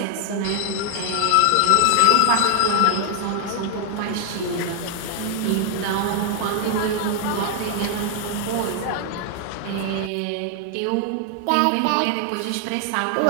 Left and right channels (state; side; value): different; both; correlation 0.00